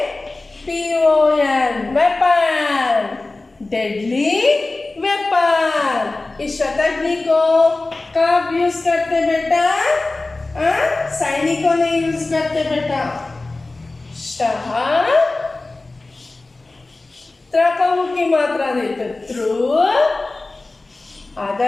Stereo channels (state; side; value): quieter; right; 3.2 dB